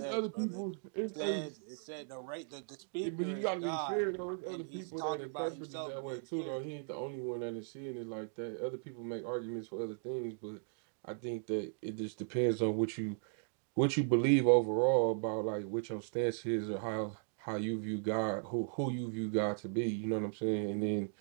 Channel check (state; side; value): silent; left; digital silence